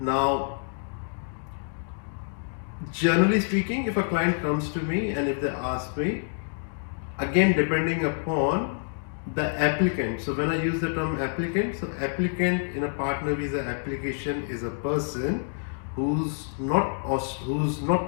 generally speaking, if a client comes to me and if they ask me, again depending upon the applicant. So when I use the term applicant, so applicant in a partner visa application is a person who's not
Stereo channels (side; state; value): right; silent; digital silence